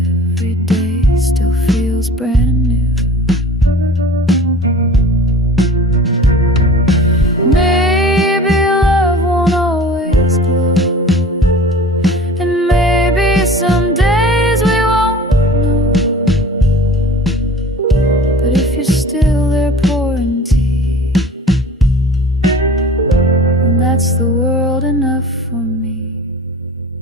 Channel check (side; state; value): both; normal; correlation 0.42